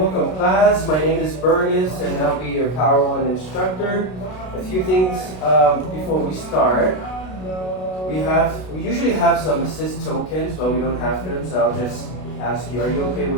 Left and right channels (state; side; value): late; right; 32 ms